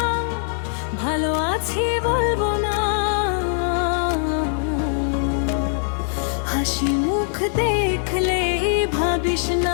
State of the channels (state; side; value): silent; right; digital silence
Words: ভালো আছি বলবো না, হাসি মুখ দেখলে ভাবিস